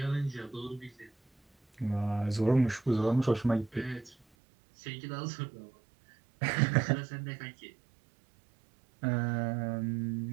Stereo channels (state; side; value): drops out; left; at 4.2 s